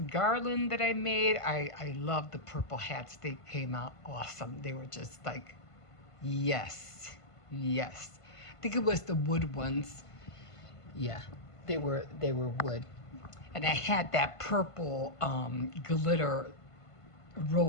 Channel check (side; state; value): right; late; 1.5 ms